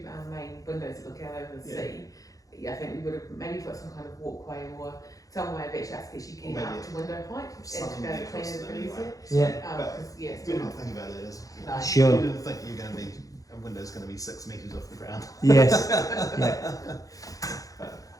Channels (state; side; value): late; right; 0.17 ms